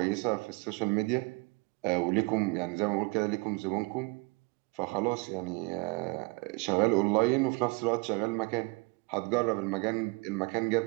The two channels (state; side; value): quieter; left; 28.1 dB